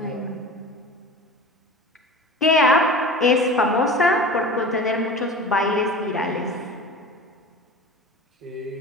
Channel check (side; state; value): both; normal; correlation 0.36